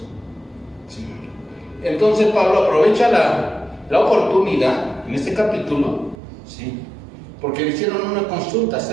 ¿sí? Entonces Pablo aprovecha la oportunidad en este capítulo, ¿sí?, porque le hicieron una consulta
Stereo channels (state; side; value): drops out; left; at 6.2 s